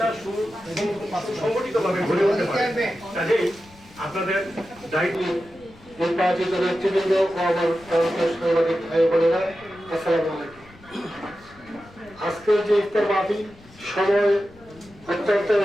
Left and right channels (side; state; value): left; noise; rumble, 24 dB below the sound